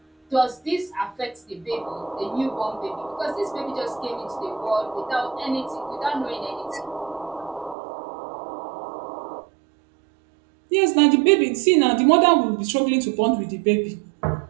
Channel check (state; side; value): drops out; left; at 7.8 s